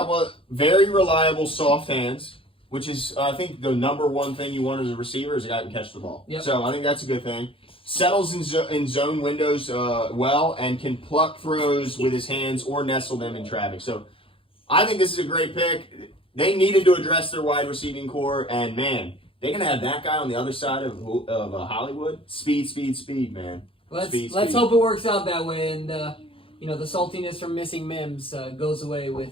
of very reliable soft hands, which is I think the number one thing you want as a receiver is a guy who can catch the ball. Yep. So I think that's a good thing. Settles in zone windows well and can pluck throws with his hands or nestle them in traffic. So I think this is a great pick. They needed to address their wide receiving core, and man, they're gonna have that guy on the other side of Hollywood. Speed, man. Let's hope it works out that way, and the saltiness from missing Mims goes away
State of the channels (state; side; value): late; right; 0.26 ms